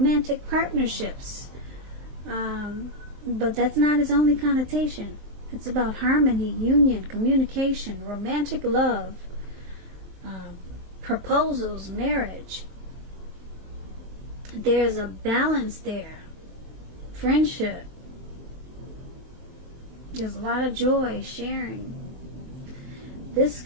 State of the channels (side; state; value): left; late; 23 ms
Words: partnerships. But that's not its only connotation. It's about harmony, union, communication, romantic love, proposals, marriage. There's a balance there. Friendship. There's a lot of joy, sharing. This